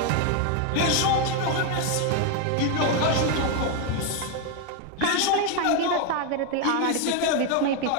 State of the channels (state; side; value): different; both; correlation 0.01